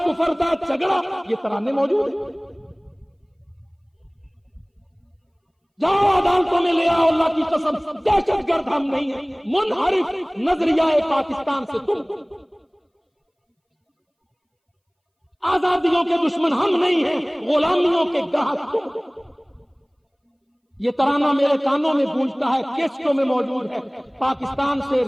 کفر دا جھگڑا۔ یہ ترانے موجود ہیں، جاؤ عدالتوں میں لے آؤ، اللہ کی قسم دہشت گرد ہم نہیں ہیں، منحرف نظریہ پاکستان سے تم، آزادیوں کے دشمن ہم نہیں ہیں، غلامیوں کے گاہک تم۔ یہ ترانہ میرے کانوں میں گونجتا ہے، کیسٹوں میں موجود ہے، پاکستان سے،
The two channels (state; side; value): identical; both; correlation 1.00